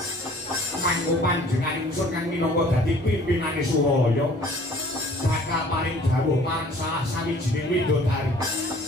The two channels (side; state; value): both; normal; correlation 0.53